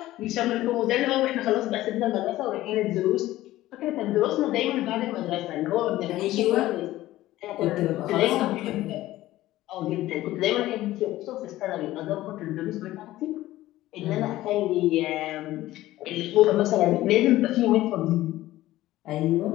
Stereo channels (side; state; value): right; quieter; 15.8 dB